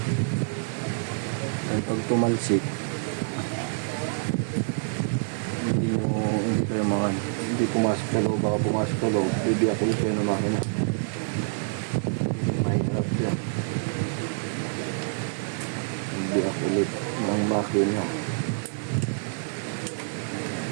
Ay, pag tumalsik, hindi kayo makan, hindi pumasok sa loob, baka pumasok sa loob, bibiyak ulit kayo ng makina. Mahirap yan, bibiyak ulit ng makina.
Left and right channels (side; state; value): left; silent; digital silence